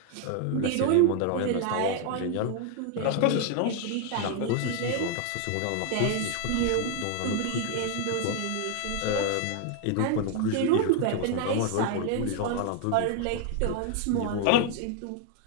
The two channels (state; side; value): different; both; correlation 0.00